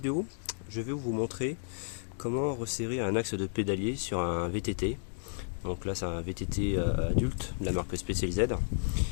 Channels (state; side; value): silent; right; digital silence